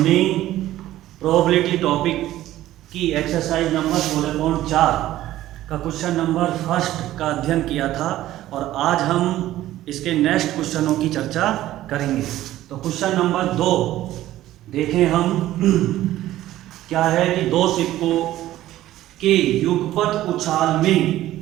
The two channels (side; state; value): left; quieter; 14.4 dB